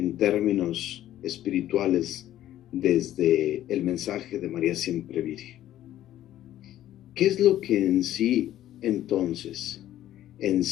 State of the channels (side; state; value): right; quieter; 12.9 dB